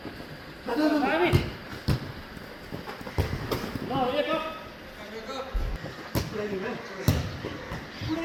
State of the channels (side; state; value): both; identical; correlation 1.00